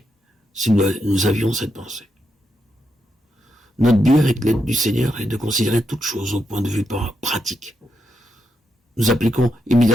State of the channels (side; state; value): both; normal; correlation 0.82